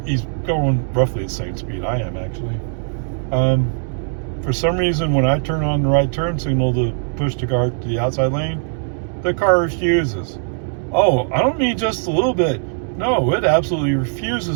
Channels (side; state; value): left; silent; digital silence